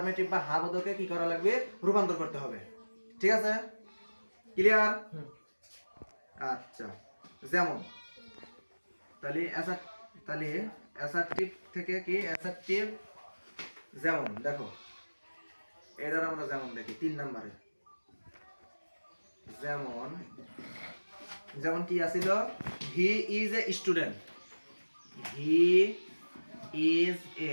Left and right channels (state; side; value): inverted; both; correlation -1.00